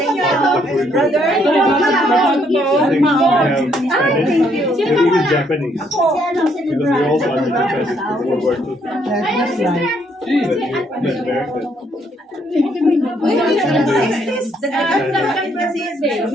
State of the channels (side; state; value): both; normal; correlation 0.70